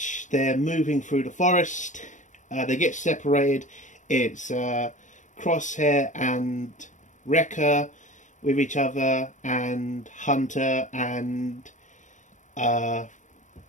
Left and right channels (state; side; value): late; right; 0.36 ms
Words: they're moving through the forest. They get separated. It's Crosshair and Wrecker with each other, and Hunter and